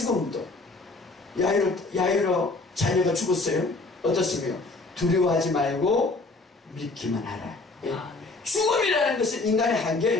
야이로 자녀가 죽었어요. 어떻습니까? 두려워하지 말고 믿기만 하라. 예. 죽음이라는 것은 인간의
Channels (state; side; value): quieter; right; 3.4 dB